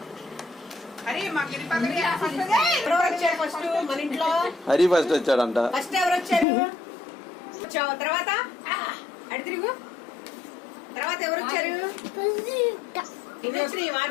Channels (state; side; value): drops out; right; at 6.5 s